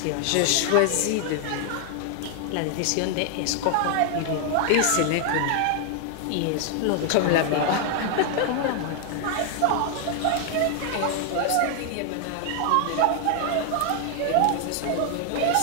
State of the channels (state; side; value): different; both; correlation 0.00